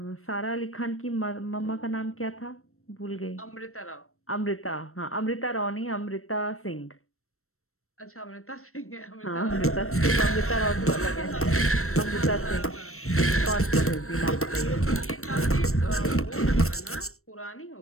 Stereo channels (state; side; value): late; right; 0.63 ms